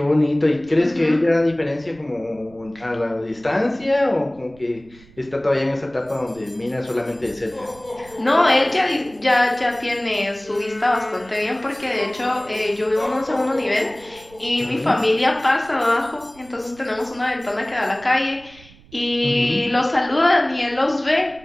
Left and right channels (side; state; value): right; noise; rumble, 25 dB below the sound